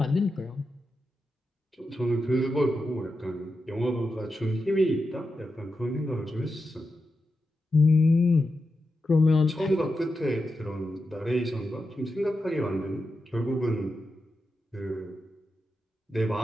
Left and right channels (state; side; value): normal; both; correlation 0.89